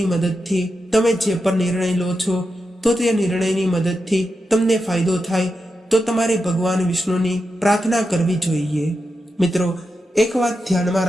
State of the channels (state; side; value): normal; both; correlation 0.88